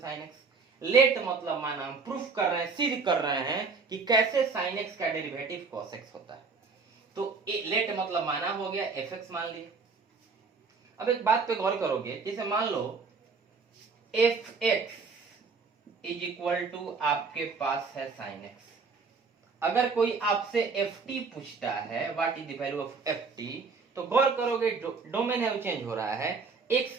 x। Let मतलब माना हम प्रूफ कर रहे हैं, सिद्ध कर रहे हैं कि कैसे sin x का डेरिवेटिव cos x होता है। तो लेट मतलब माना हो गया, fx मान लिए। अब एक बात पे गौर करोगे, जैसे मान लो fx इज इक्वल टू आपके पास है sin x। अगर कोई आपसे ft पूछता है what is the value of ft, तो गौर करोगे डोमेन है वो चेंज हो रहा है, x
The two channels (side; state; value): left; quieter; 4.7 dB